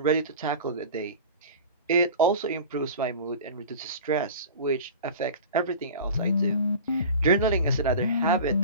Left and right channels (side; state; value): both; inverted; correlation -0.35